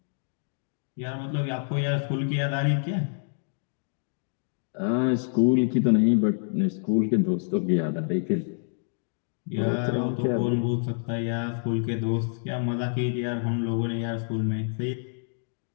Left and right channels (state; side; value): silent; right; digital silence